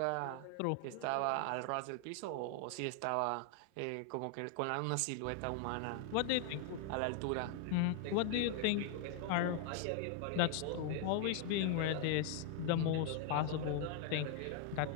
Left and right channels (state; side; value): different; both; correlation 0.00